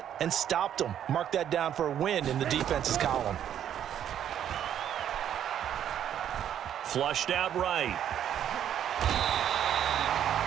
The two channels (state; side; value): quieter; left; 10.0 dB